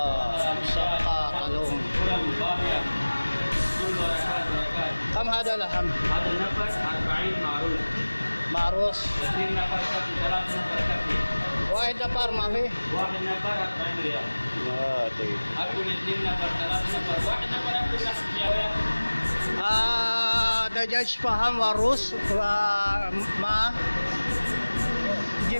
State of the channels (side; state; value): both; inverted; correlation -1.00